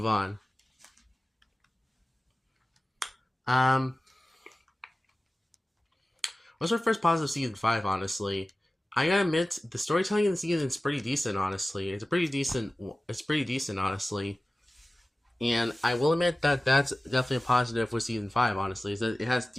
on. What's our first positive season 5, honestly? I gotta admit, the storytelling in the season is pretty decent, honestly. It's pretty decent, honestly. And I will admit that that's definitely a positive with season 5, honestly. Is that it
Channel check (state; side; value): normal; both; correlation 0.96